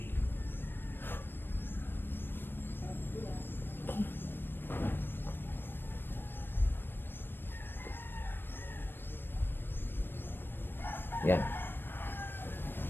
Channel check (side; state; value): right; late; 0.098 ms